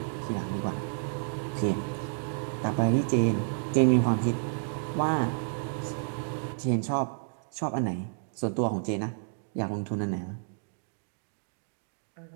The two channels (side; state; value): left; silent; digital silence